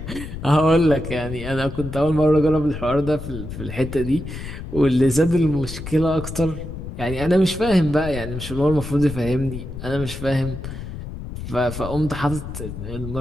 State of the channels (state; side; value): noise; left; rumble, 9 dB below the sound